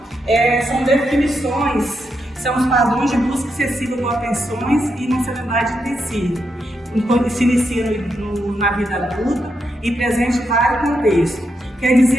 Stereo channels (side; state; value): both; normal; correlation 0.83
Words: são definições, são os padrões de busca excessiva por atenções e emocionalidade intensiva. Enquanto se inicia na vida adulta e presente em vários contextos. Quer